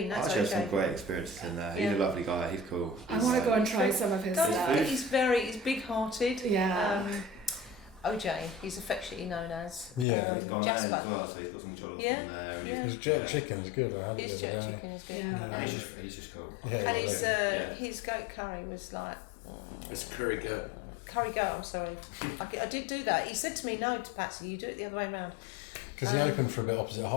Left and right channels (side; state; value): right; drops out; at 10.1 s